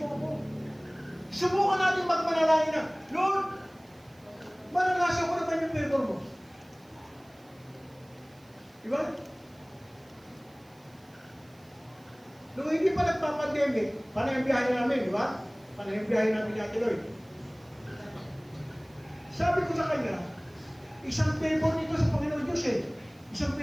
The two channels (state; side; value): noise; right; hiss, 30 dB below the sound